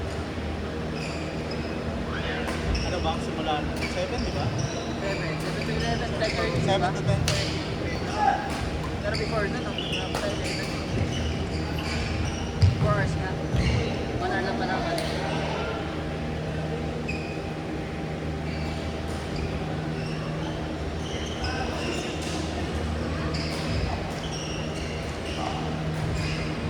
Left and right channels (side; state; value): both; identical; correlation 1.00